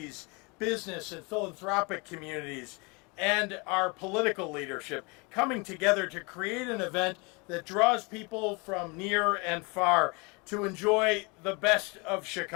business and philanthropic communities and our political leadership coming together to create an event that draws people from near and far to enjoy the best of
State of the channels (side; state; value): right; quieter; 29.3 dB